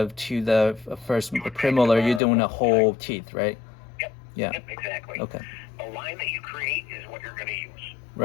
to the first premolar, you're doing a whole teeth, right? Yep. Yeah. Yep, exactly. Okay. The line that you create is what you're going to use.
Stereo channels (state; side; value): drops out; right; at 2.2 s